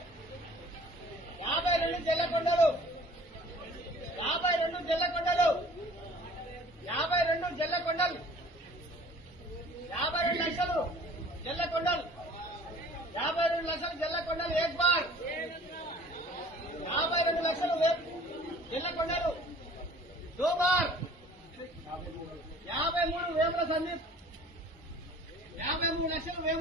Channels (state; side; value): normal; both; correlation 0.49